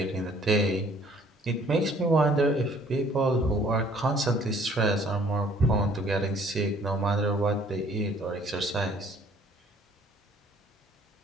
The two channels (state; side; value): normal; both; correlation 0.58